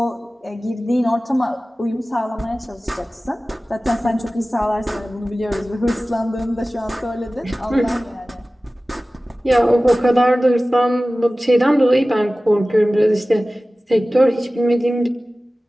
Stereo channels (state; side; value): normal; both; correlation 0.97